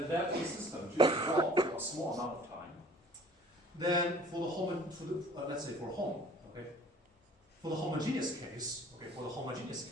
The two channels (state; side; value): normal; both; correlation 0.51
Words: let the system to evolve for a small amount of time, then for the let's say for home, okay, for the homogeneous